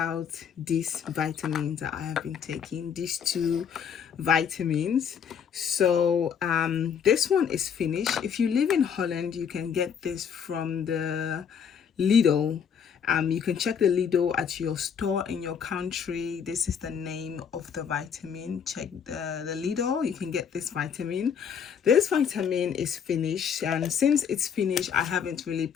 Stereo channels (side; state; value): right; quieter; 7.5 dB